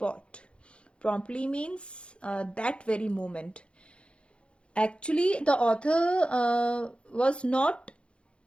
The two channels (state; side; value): late; right; 0.058 ms